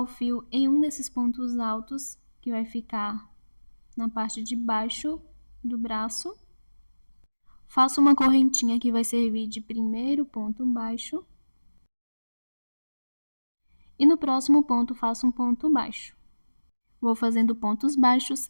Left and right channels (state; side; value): inverted; both; correlation -1.00